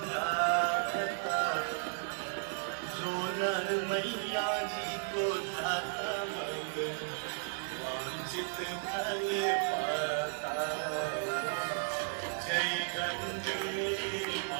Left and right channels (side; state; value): left; silent; 55 dB below the other